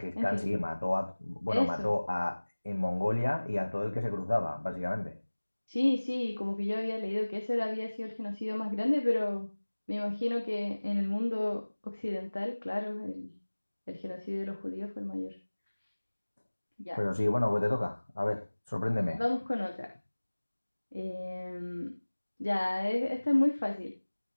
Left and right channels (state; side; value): inverted; both; correlation -1.00